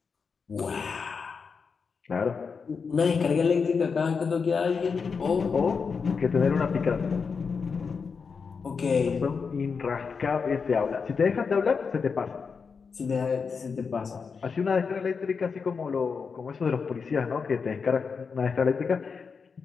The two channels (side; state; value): right; quieter; 5.5 dB